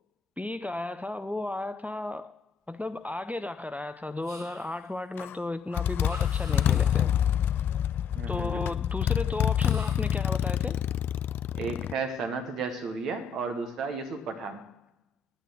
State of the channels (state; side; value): quieter; right; 5.9 dB